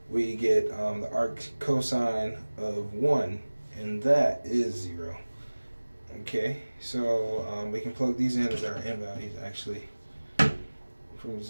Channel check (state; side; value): inverted; both; correlation -1.00